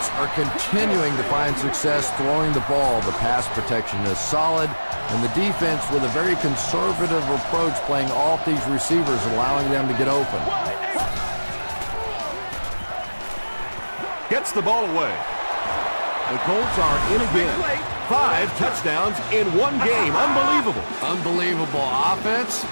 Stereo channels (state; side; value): inverted; both; correlation -1.00